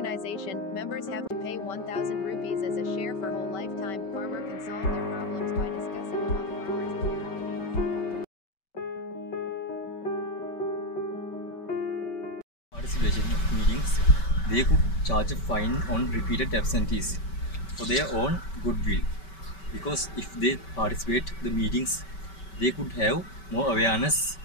Members have to pay 1,000 rupees as a share for whole lifetime. Farmer can solve their problems by discussing among farmers at their meetings. Participation of meetings, they could charge a fine on repeated absentees for their own goodwill. Because if they participate the meetings, they could have more awareness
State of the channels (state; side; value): late; right; 5.2 ms